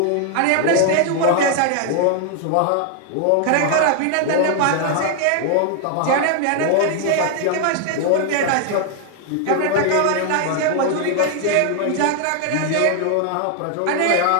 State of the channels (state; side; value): different; both; correlation 0.00